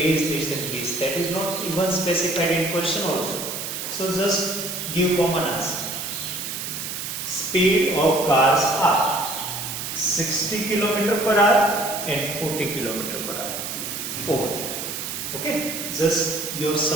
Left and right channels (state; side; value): noise; right; hiss, 5 dB below the sound